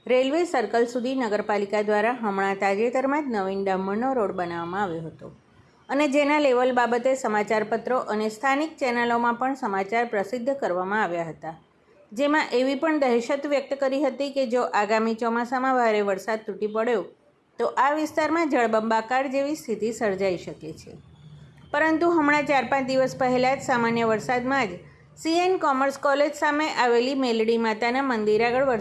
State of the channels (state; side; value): identical; both; correlation 1.00